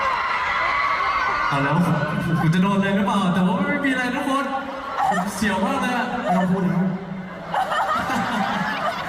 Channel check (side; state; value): both; identical; correlation 1.00